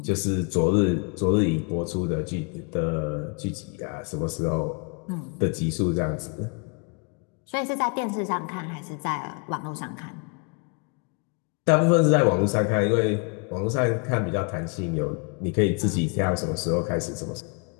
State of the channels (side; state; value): right; quieter; 35.8 dB